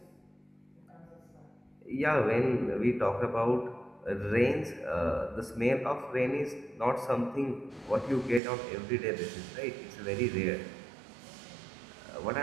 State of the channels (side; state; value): left; drops out; at 8.4 s